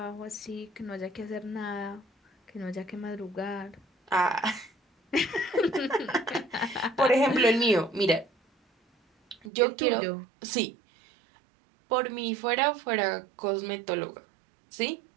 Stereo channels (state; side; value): drops out; left; at 9.5 s